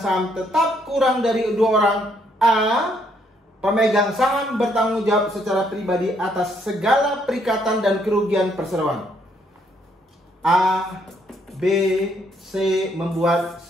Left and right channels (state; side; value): normal; both; correlation 0.71